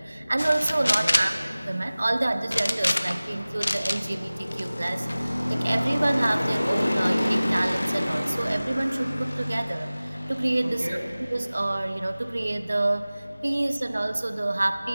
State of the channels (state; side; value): inverted; both; correlation -0.98